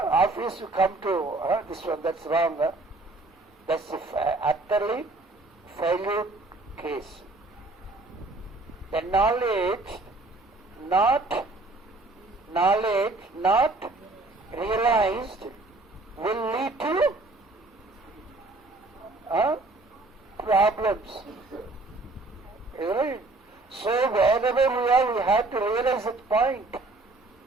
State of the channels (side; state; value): left; quieter; 3.1 dB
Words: you come to this one, that's wrong. That's utterly failure case. The knowledge not realized will lead to problems. Right? So wherever we are, we have to realize that point.